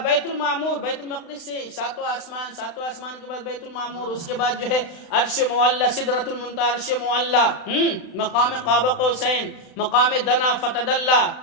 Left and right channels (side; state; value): right; late; 35 ms